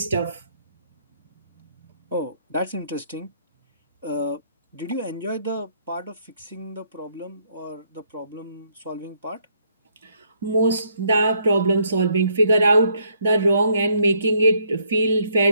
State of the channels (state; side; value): inverted; both; correlation -0.70